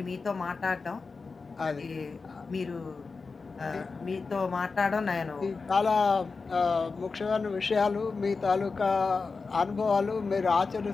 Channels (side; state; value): right; quieter; 4.4 dB